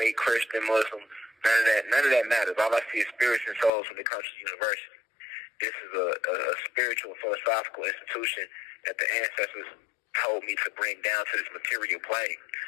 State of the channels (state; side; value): drops out; right; at 3.7 s